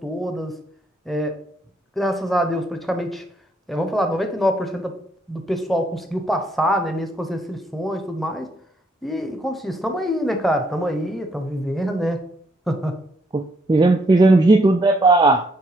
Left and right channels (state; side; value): normal; both; correlation 0.71